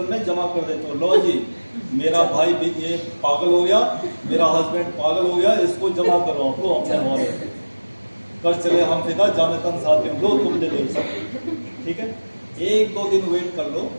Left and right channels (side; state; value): both; inverted; correlation -1.00